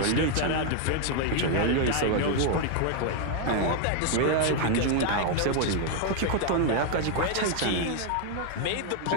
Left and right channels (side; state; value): both; different; correlation 0.00